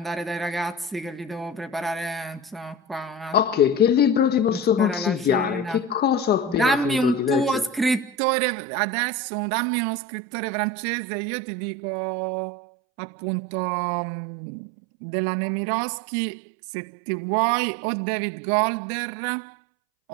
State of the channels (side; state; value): left; drops out; at 8.2 s